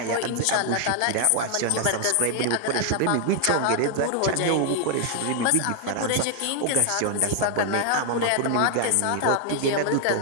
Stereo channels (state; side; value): different; both; correlation 0.00